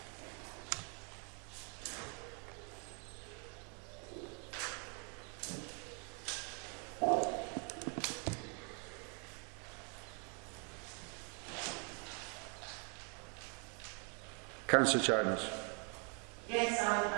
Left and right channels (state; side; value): quieter; left; 36.6 dB